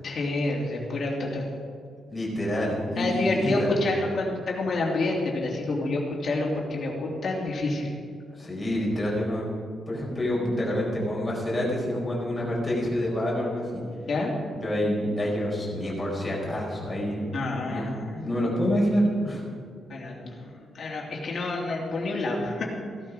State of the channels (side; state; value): both; normal; correlation 0.84